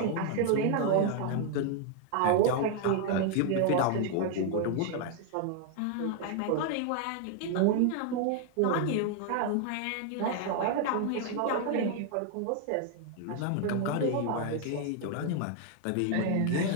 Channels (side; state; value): both; different; correlation 0.00